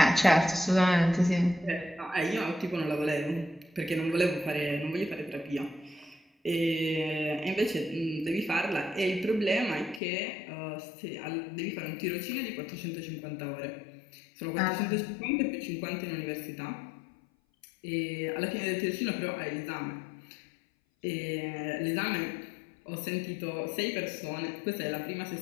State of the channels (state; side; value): drops out; right; at 10.0 s